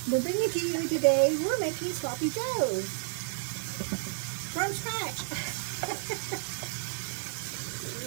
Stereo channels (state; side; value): silent; left; digital silence